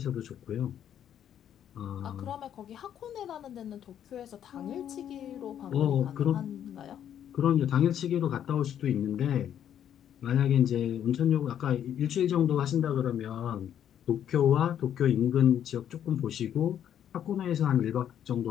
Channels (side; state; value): right; quieter; 9.9 dB